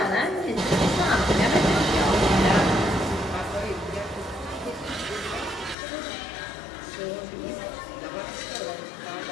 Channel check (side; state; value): right; drops out; at 5.8 s